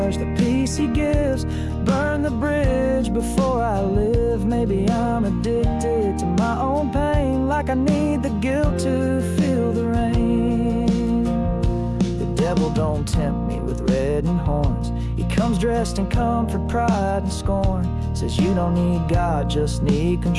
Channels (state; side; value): identical; both; correlation 1.00